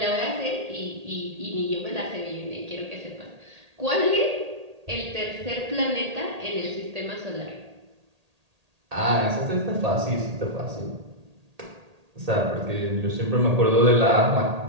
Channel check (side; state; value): left; late; 1.8 ms